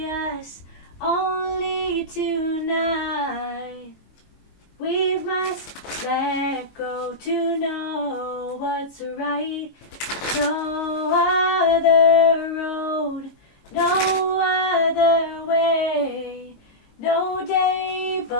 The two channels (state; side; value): late; right; 22 ms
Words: us, only tonight. We must let go to know what's right. No other road, no other way, no day